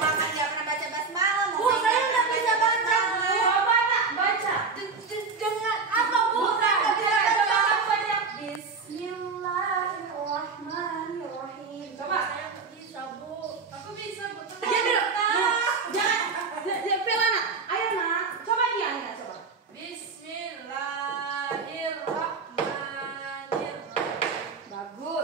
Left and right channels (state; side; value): quieter; left; 4.7 dB